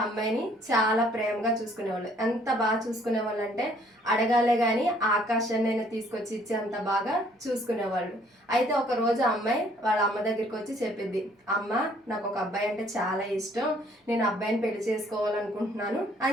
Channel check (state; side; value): normal; both; correlation 0.62